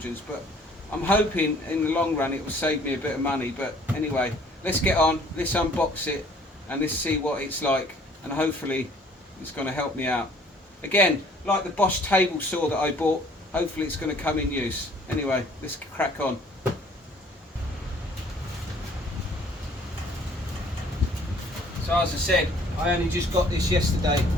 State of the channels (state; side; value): normal; both; correlation 0.57